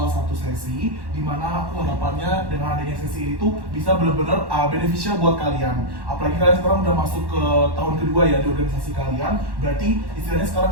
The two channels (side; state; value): left; late; 1.1 ms